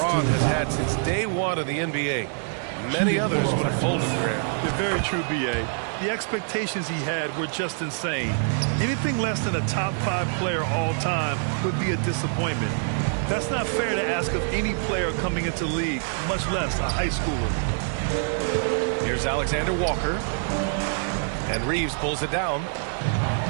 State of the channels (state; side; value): silent; left; 61 dB below the other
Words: has had since day one of the NBA. Many others would have folded, Grant. You're very true, B.A. The expectations he had were just insane. Anything less than a top 5 player all time would be a disappointment. That's not fair to ask of any player coming into the league, much less a high schooler. Here's Alexander Walker. And Reeves pulls it down.